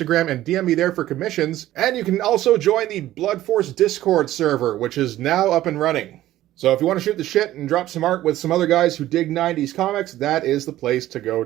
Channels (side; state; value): left; quieter; 14.4 dB